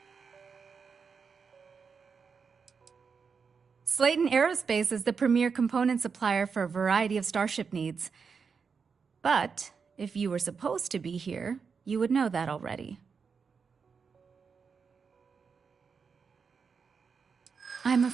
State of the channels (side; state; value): left; quieter; 5.7 dB